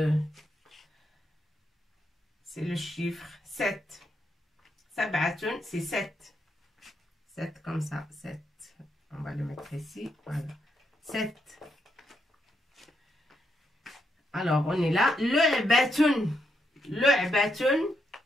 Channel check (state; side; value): normal; both; correlation 0.80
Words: chiffre 7. Sab'atun, c'est 7. 7 comme ça, 7. On va le mettre ici, voilà. 7. Alors, on est là. Lu'batun. Lu'batun.